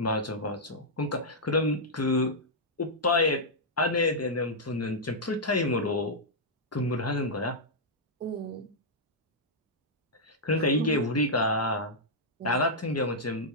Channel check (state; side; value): normal; both; correlation -0.07